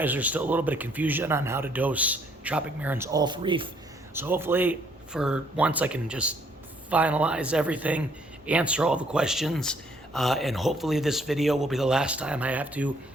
there's still a little bit of confusion on how to dose Tropic Marin's Alpha Reef. So hopefully, for once, I can just finalize everything, answer all the questions, and hopefully this video will be the last time I have to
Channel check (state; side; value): normal; both; correlation 0.65